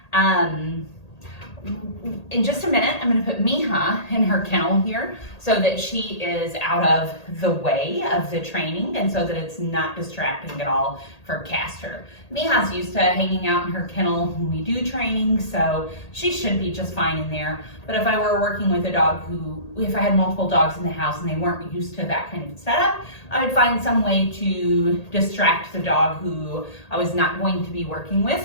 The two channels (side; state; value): right; late; 1.8 ms